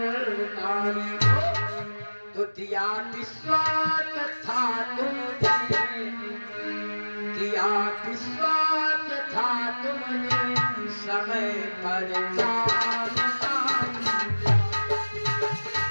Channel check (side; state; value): both; inverted; correlation -1.00